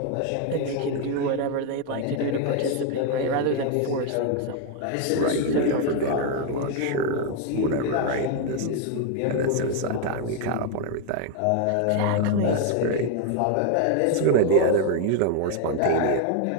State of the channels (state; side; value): different; both; correlation 0.01